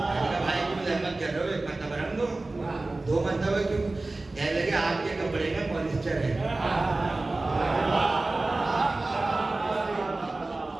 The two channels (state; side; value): quieter; left; 3.1 dB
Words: بھائی کیوں زحمت کر رہے ہو, 1 مرتبہ رنگ دو, 2 مرتبہ کیوں؟ کہنے لگے آپ کے کپڑے میں پالیسٹر ہے.